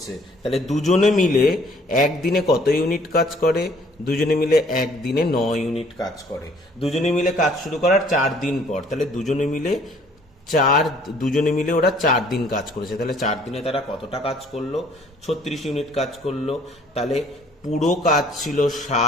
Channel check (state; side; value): normal; both; correlation 0.59